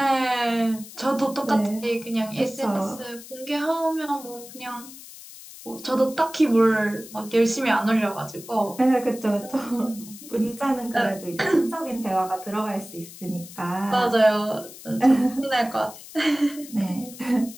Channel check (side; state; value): left; noise; hiss, 16 dB below the sound